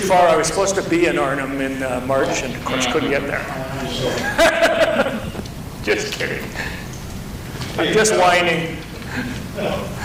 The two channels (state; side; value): identical; both; correlation 1.00